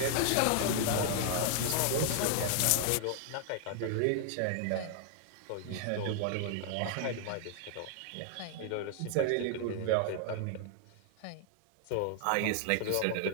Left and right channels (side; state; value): both; different; correlation 0.00